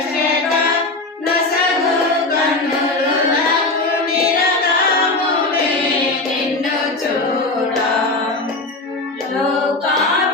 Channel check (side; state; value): right; quieter; 3.1 dB